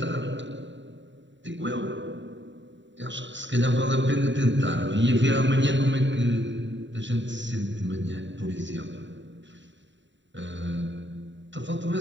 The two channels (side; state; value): left; late; 0.53 ms